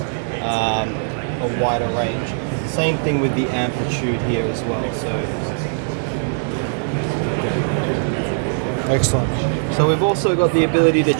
range. Same thing with the amplitude here as well. So, okay. Excellent. So we've also got the ability to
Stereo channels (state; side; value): silent; left; digital silence